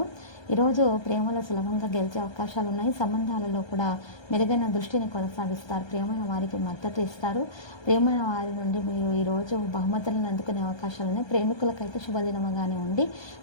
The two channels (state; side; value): late; right; 1.2 ms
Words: ఈరోజు ప్రేమలో సులభంగా గెలిచే అవకాశాలు ఉన్నాయి. సంబంధాలలో కూడా మెరుగైన దృష్టిని కొనసాగిస్తారు. ప్రియమైన వారికి మద్దతు ఇస్తారు. ప్రియమైన వారి నుండి మీరు ఈరోజు బహుమతులను అందుకునే అవకాశాలు ఉన్నాయి. ప్రేమికులకైతే శుభదినముగానే ఉండి